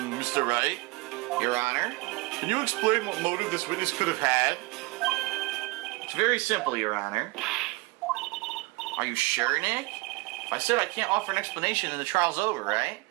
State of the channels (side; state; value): left; quieter; 23.8 dB